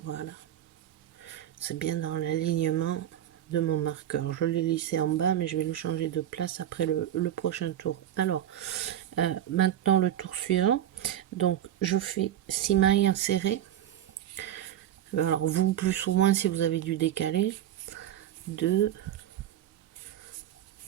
C'est bien dans l'alignement de mon marqueur. Je l'ai lissé en bas, mais je vais le changer de place après le prochain tour. Alors, maintenant le tour suivant. Donc, je fais 6 mailles insérées. Alors, vous plus ou moins si vous avez dû décaler. 2,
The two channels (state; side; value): quieter; left; 11.4 dB